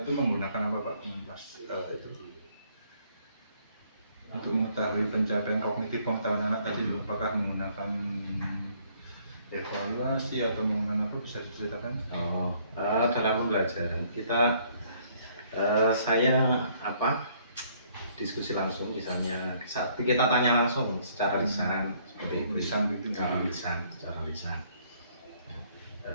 itu menggunakan apa Pak? Itu untuk mengetahui pencapaian kognitif pengetahuan anak tadi, apakah menggunakan evaluasi atau menggunakan apa, bisa diceritakan? Dalam pembelajaran kita saya diskusi langsung, misalnya saat kita tanya langsung secara lisan seperti itu, secara lisan.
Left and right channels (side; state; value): both; inverted; correlation -0.64